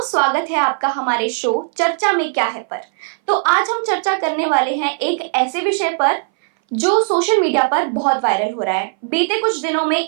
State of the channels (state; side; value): silent; left; 61 dB below the other